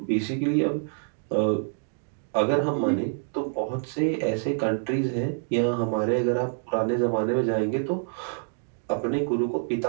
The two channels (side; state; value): left; silent; digital silence